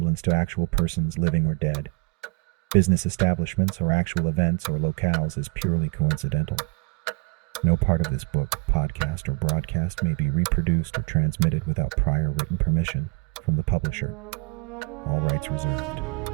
to actual persons, living or dead, business establishments, or actual events or locales is purely coincidental. No part of this book, podcast, or broadcast may be reproduced or transmitted without prior written permission from the publisher. All rights reserved.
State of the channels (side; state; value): left; quieter; 25.8 dB